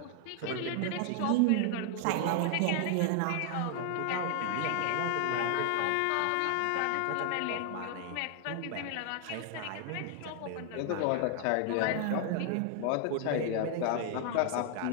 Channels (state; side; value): different; both; correlation 0.00